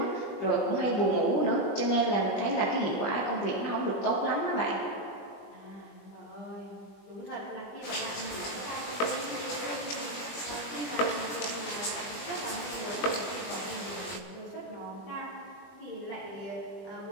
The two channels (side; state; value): right; late; 20 ms